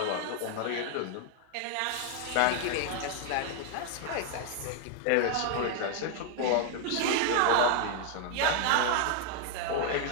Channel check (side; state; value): both; different; correlation 0.00